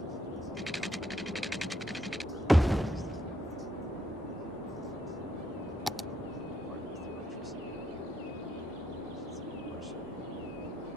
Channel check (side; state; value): both; normal; correlation 0.75